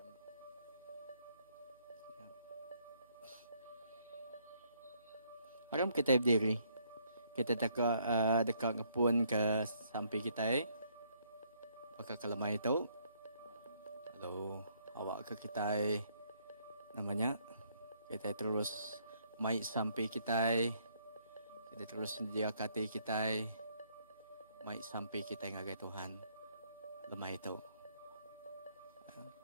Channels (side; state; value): both; inverted; correlation -0.69